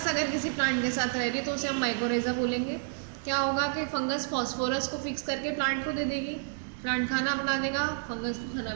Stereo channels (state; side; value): silent; left; digital silence